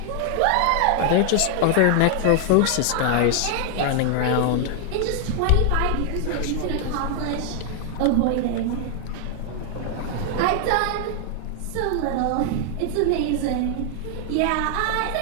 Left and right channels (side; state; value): both; different; correlation 0.00